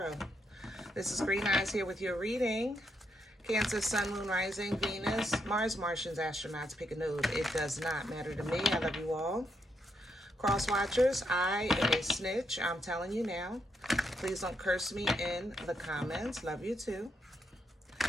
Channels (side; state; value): both; normal; correlation 0.79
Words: This is Green Eyes here with your reading. Cancer, Sun, Moon, Rising, Venus, Mars, Martians, astronauts, pick a node. It does not matter to me. I love you all. Cross watchers, I am a snitch. I'm telling you now. Please don't curse me in the comments. Love you too.